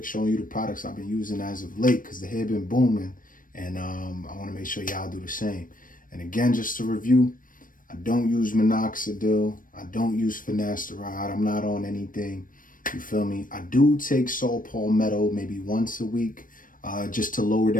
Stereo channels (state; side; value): late; right; 0.40 ms